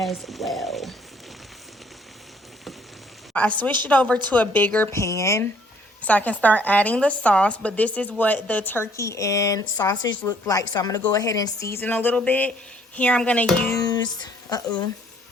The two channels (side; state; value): both; normal; correlation 0.62